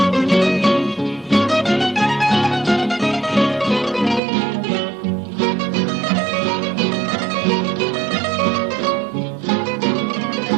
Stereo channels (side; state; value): left; drops out; at 4.2 s